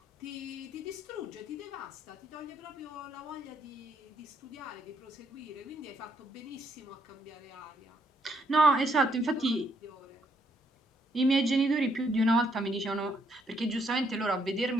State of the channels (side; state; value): both; normal; correlation 0.72